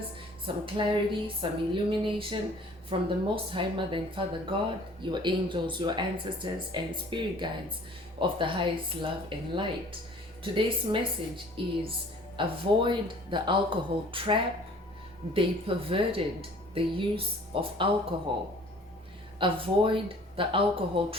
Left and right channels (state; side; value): normal; both; correlation 0.51